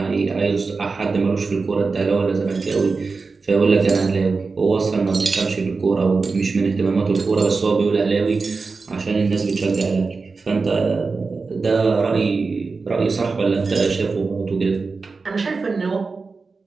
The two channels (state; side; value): quieter; left; 4.3 dB